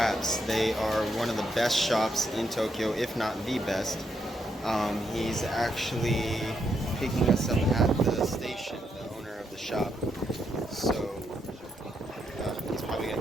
They are one of the best shops in Tokyo, if not the best. He's actually picking us up at the station, the owner of the shop. So he's probably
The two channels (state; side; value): normal; both; correlation 0.79